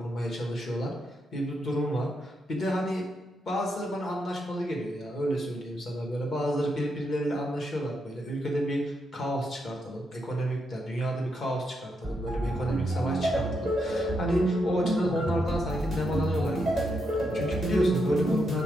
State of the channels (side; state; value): both; normal; correlation 0.81